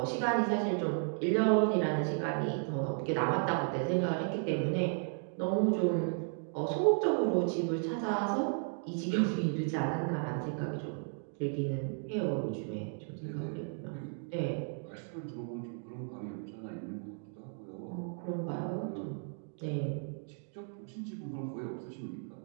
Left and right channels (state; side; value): silent; left; 55 dB below the other